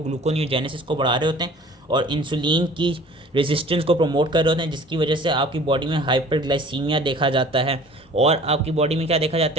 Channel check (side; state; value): both; normal; correlation 0.47